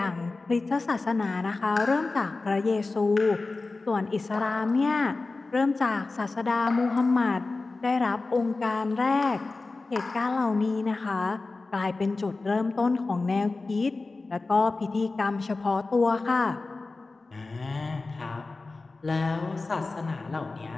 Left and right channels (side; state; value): right; quieter; 3.6 dB